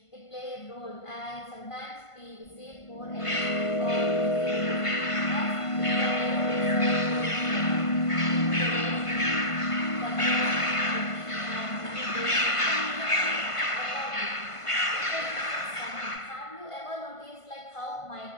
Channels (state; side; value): late; right; 1.5 ms